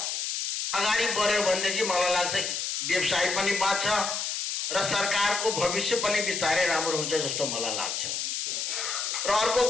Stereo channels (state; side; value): noise; left; hiss, 2 dB below the sound